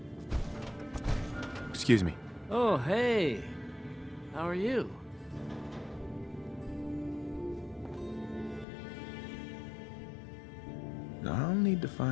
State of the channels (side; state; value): right; drops out; at 8.7 s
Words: Excuse me. Oh, hey. How are you? I'll need to